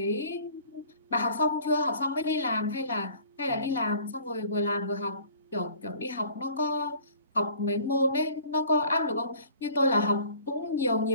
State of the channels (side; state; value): both; inverted; correlation -0.50